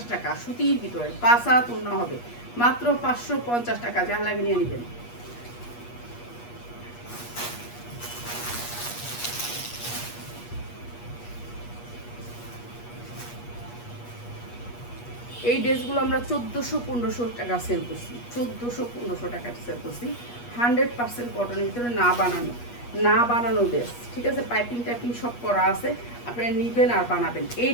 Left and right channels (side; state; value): right; late; 8.4 ms